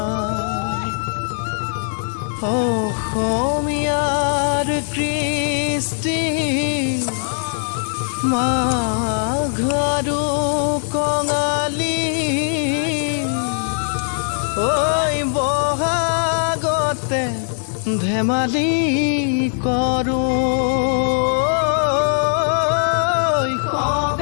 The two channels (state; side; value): silent; right; digital silence